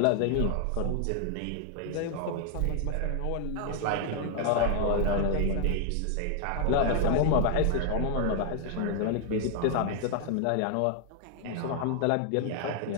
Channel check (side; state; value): both; different; correlation 0.00